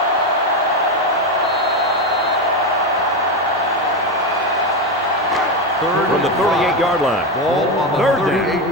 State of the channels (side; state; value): both; normal; correlation 0.12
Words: Third From the 38-yard line. Ball on the Third down.